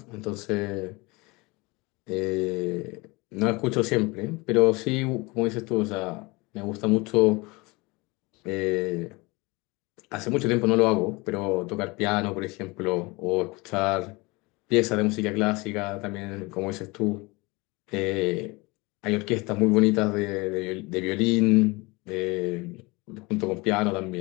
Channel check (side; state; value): right; quieter; 24.9 dB